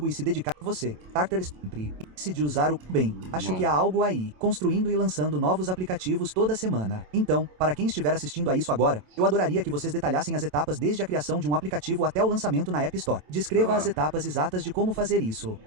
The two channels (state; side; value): late; left; 27 ms